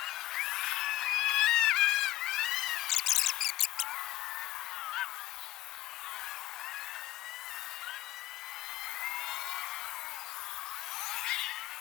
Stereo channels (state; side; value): quieter; right; 15.7 dB